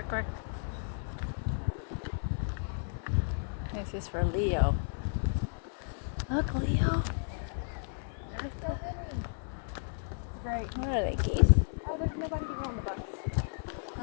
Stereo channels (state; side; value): silent; right; 56 dB below the other